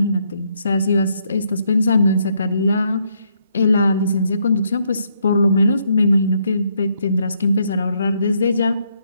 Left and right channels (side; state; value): both; inverted; correlation -0.73